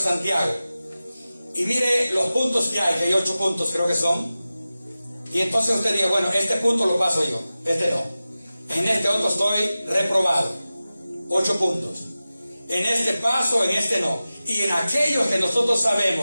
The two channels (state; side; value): inverted; both; correlation -0.95